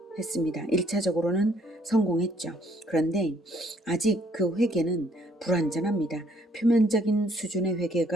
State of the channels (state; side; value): normal; both; correlation 0.65